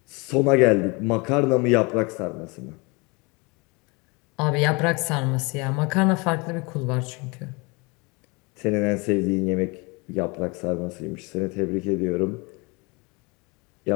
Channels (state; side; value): quieter; right; 28.1 dB